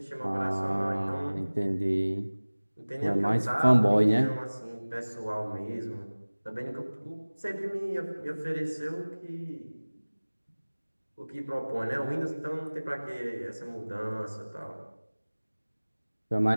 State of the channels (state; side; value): inverted; both; correlation -1.00